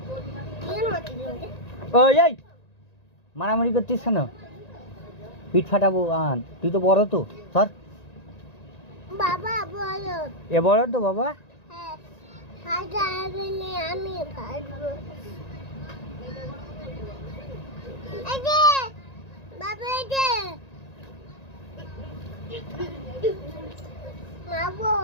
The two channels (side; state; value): right; late; 1.9 ms